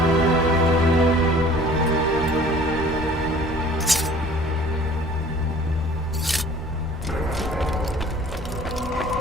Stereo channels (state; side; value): normal; both; correlation 0.50